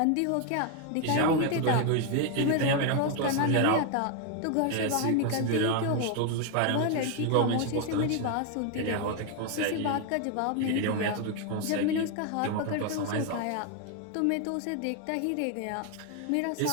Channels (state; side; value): different; both; correlation 0.01